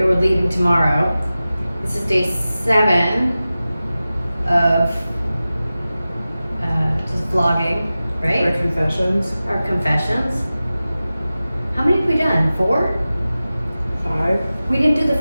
We're leaving tomorrow. This is day 7 of just vlogging, right? Our confessions. Our confessions. How many have we done? 4? 5. We didn't do the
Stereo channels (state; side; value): inverted; both; correlation -0.96